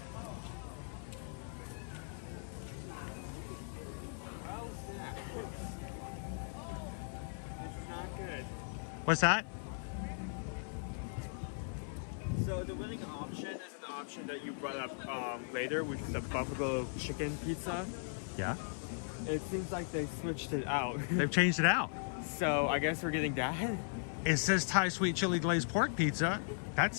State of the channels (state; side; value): silent; right; 52 dB below the other